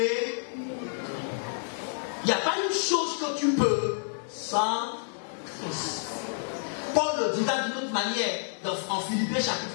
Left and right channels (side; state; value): right; silent; 56 dB below the other